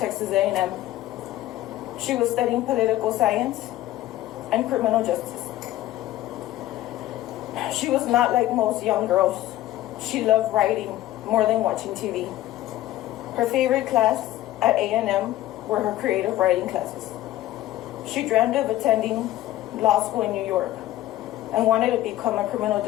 A&M. She was studying political science and criminal justice. She was not like most young girls. She loved writing more than watching TV. Her favorite class at A&M were her creative writing classes. She dreamed of attending law school in New York and wanted to become a criminal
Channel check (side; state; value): right; quieter; 14.7 dB